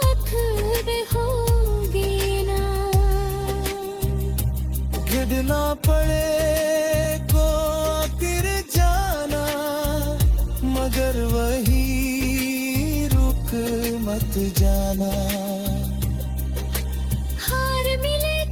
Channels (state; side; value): identical; both; correlation 1.00